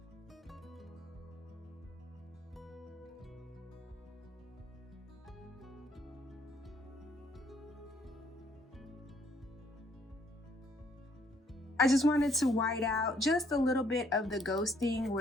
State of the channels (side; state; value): both; normal; correlation 0.66